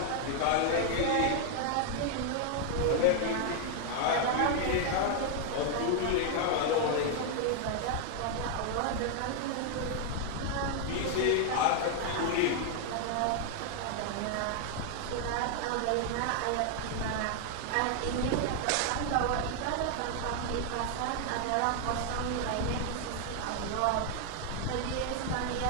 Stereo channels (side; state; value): both; different; correlation 0.00